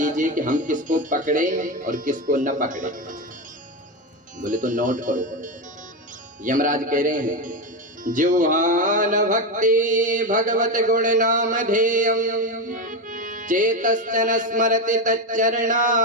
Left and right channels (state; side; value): normal; both; correlation 0.14